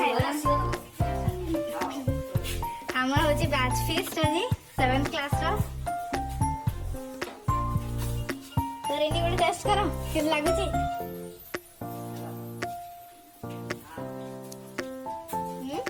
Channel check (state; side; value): identical; both; correlation 1.00